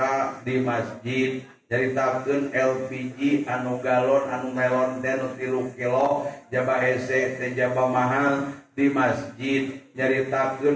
di masjid, nyaritakeun LPG anu galon anu melon teh 3 kilo, jaba hese teh jaba mahal di masjid,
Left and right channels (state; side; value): identical; both; correlation 1.00